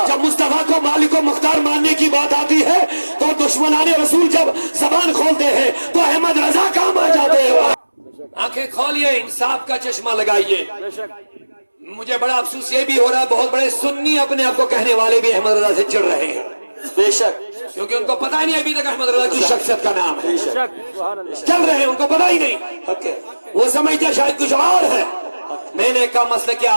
جب مصطفیٰ کو مالک و مختار ماننے کی بات آتی ہے تو دشمنان رسول جب زبان کھولتے ہیں تو احمد رضا کام آ جاتے ہیں۔ آنکھیں کھولیے، انصاف کا چشمہ لگائیے۔ مجھے بڑا افسوس یہ بھی ہو رہا ہے بہت بڑے سنی اپنے آپ کو کہنے والے بھی احمد رضا سے چڑھ رہے ہیں، بے شک، کیونکہ ان کو پتہ ہی نہیں ابھی تک احمد رضا کی شخصیت کا نام ہے، چل رہے ہیں، ان کو پتہ ہی نہیں، وہ سمجھتے شاید کچھ اور ہے۔ میں نے کہا مسلک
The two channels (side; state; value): both; inverted; correlation -1.00